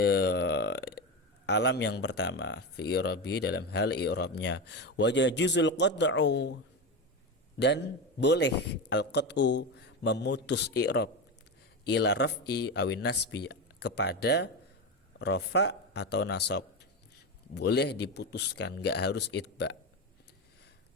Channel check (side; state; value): both; normal; correlation 0.18